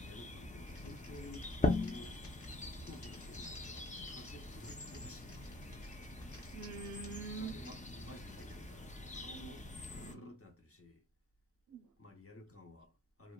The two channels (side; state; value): both; normal; correlation 0.59